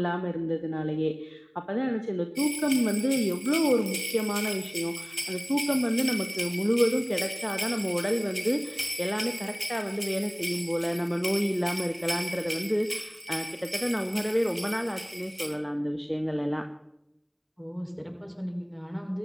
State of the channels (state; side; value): identical; both; correlation 1.00